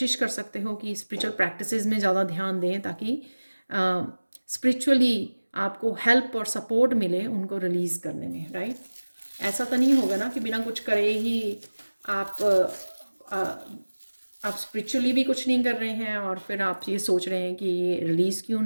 कर सकते हो कि स्पिरिचुअल प्रैक्टिसेस में ज़्यादा ध्यान दें ताकि स्पिरिचुअली आपको हेल्प और सपोर्ट मिले उनको रिलीज़ करने में, राइट। ऐसा तो नहीं होगा ना कि बिना कुछ करे ही आप आप स्पिरिचुअली भी कुछ नहीं कर रहे हैं और फिर आप ये सोच रहे हैं कि ये रिलीज़ क्यों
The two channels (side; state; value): both; inverted; correlation -1.00